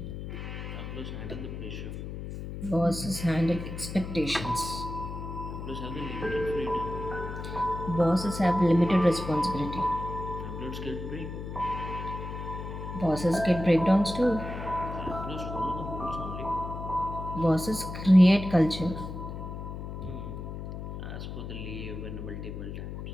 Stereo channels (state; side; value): noise; left; hum, 7 dB below the sound